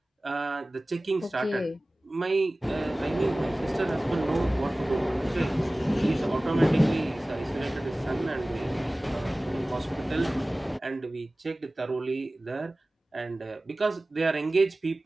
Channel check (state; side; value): normal; both; correlation 0.98